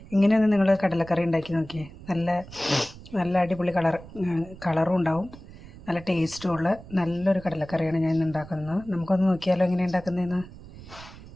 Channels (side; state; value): right; noise; rumble, 17 dB below the sound